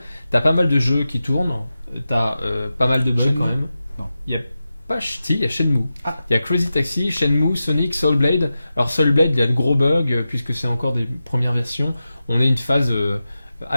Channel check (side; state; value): both; inverted; correlation -0.92